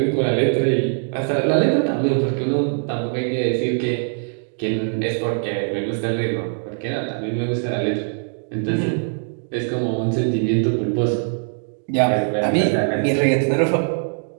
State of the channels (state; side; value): silent; left; digital silence